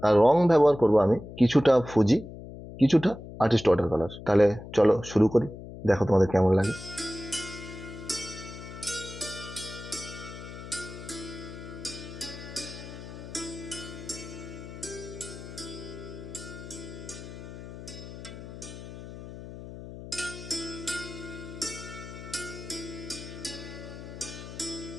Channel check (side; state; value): left; noise; hum, 12 dB below the sound